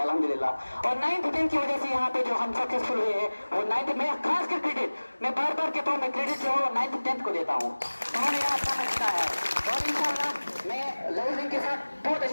और 9th 10th की वजह से यहाँ पे जो हम सक्सेसफुल हुए हैं वो 9th में खास कर क्रेडिट मैं बार बार कहता हूँ, मैं क्रेडिट जो है 9th 10th को देता हूँ। उन्होंने यहाँ काम किया है और इंशाल्लाह मैं लोअर विंग के साथ बहुत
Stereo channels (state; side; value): inverted; both; correlation -1.00